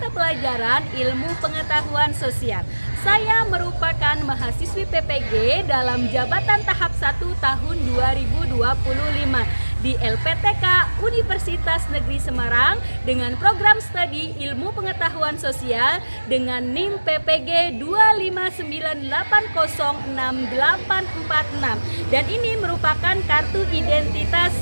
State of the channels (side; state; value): both; inverted; correlation -1.00